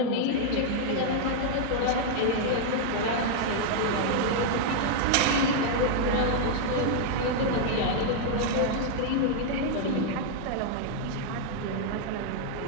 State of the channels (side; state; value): both; different; correlation -0.01